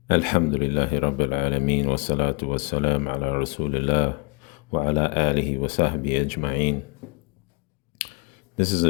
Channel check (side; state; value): right; quieter; 31.1 dB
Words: Alhamdulillahi Rabbil Alameen wa salatu wa salam ala Rasulillah wa ala alihi wa sahbihi ajma'een. This is